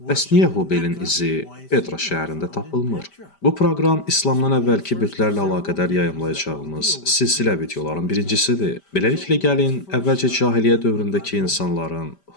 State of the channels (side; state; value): right; late; 5.1 ms